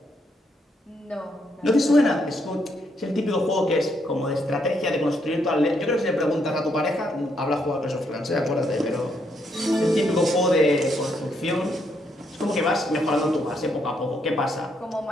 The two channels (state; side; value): normal; both; correlation 0.75